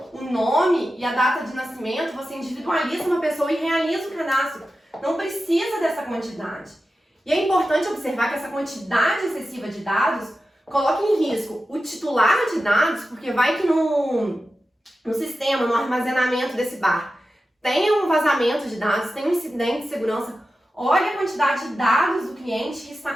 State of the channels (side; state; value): both; normal; correlation 0.92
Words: o nome e a data de nascimento, você individualiza uma pessoa e realiza o cadastro. Não precisa dessa quantidade. E é importante observar que essa quantidade excessiva de dados coloca em risco o titular de dados, porque vai que no sistema, no armazenamento desse bar, tem um vazamento de dados, tem um incidente de segurança. Olha a quantidade de dados do cliente que